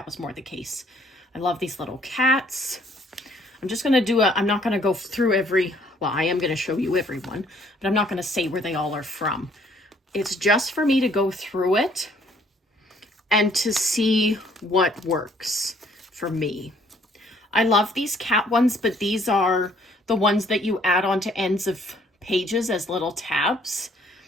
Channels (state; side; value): normal; both; correlation 0.63